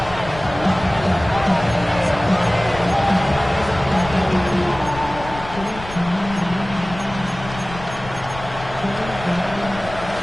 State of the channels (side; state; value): left; noise; rumble, 13 dB below the sound